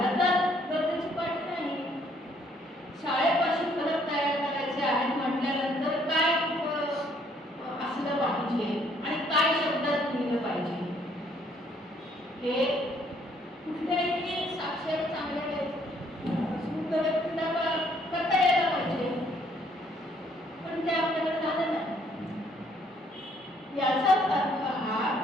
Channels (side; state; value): both; normal; correlation 0.65